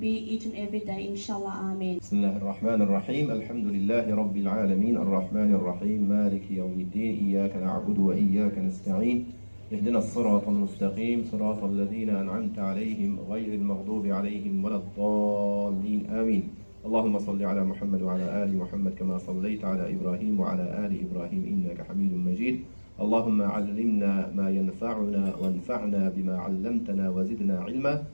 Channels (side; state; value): both; inverted; correlation -1.00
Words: each and every day, inshallah. Ameen. بسم الله الرحمن الرحيم الحمد لله رب العالمين الرحمن الرحيم مالك يوم الدين إياك نعبد وإياك نستعين اهدنا الصراط المستقيم صراط الذين أنعمت عليهم غير المغضوب عليهم ولا الضالين آمين. اللهم صل على محمد وعلى آل محمد كما صليت على إبراهيم وعلى آل إبراهيم إنك حميد مجيد. اللهم علمنا ما ينفعنا وانفعنا بما علمتنا وزدنا علما.